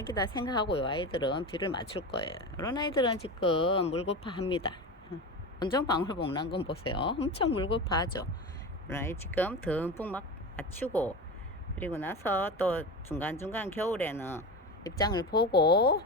생각하고 이 아이들은 비를 맞출 거예요. 이런 아이들은 지금 물고파합니다. 원정방울복 건 보세요. 엄청 물고파하죠. 지금 듬뿍 막 맞추고 그리고 나서 또 중간중간 겨울에는 입장을 보고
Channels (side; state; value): both; normal; correlation 0.25